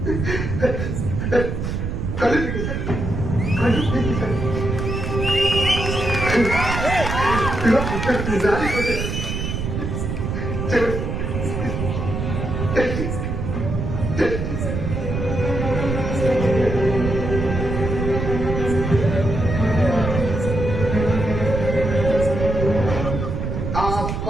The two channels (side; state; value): right; noise; rumble, 3 dB below the sound